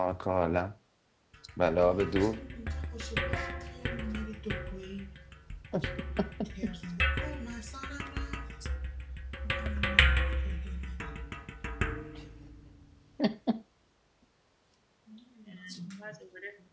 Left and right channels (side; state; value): both; identical; correlation 1.00